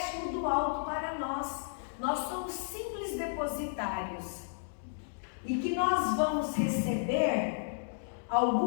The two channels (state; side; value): silent; right; digital silence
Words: do alto para nós. Nós somos simples depositários. E que nós vamos receber